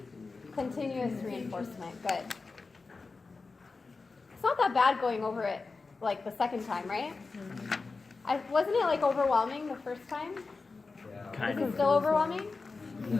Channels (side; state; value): right; quieter; 4.1 dB